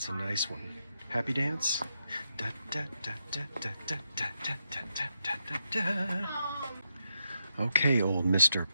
a nice one. Happy dance? Da, da, da, da, da, da, da, da, da, da, da, da. Okay, old Mr.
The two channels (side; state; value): both; inverted; correlation -0.82